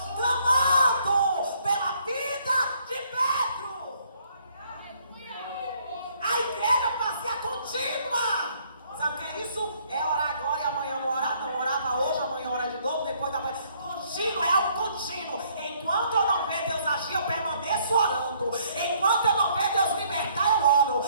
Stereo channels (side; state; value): both; inverted; correlation -0.65